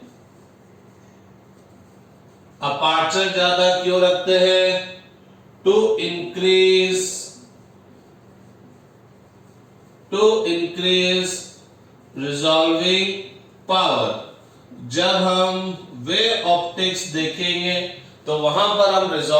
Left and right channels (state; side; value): identical; both; correlation 1.00